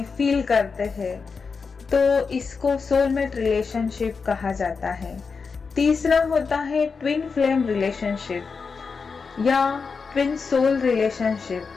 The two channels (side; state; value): right; quieter; 5.1 dB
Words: फील करते हैं, तो इसको सोलमेट रिलेशनशिप कहा जाता है। तीसरा होता है ट्विन फ्लेम रिलेशनशिप या ट्विन सोल रिलेशनशिप।